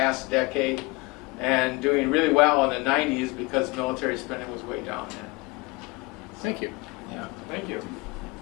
decade. and doing really well in the 90s because military spending was way down then. Thank you. Yeah. Thank you.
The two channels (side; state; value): right; quieter; 25.4 dB